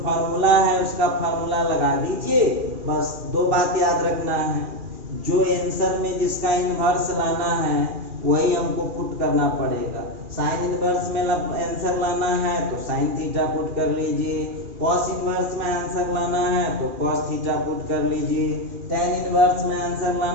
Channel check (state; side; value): late; left; 2.4 ms